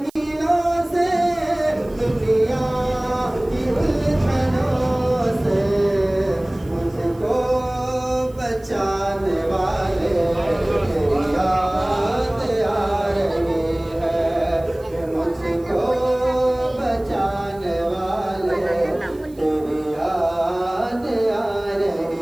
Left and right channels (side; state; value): right; noise; hiss, 28 dB below the sound